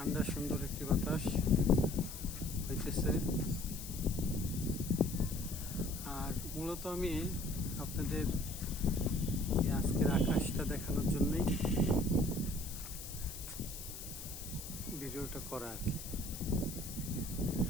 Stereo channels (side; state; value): left; noise; hiss, 10 dB below the sound